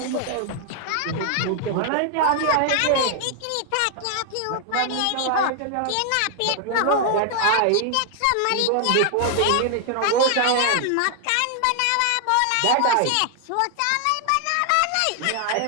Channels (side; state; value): both; different; correlation 0.00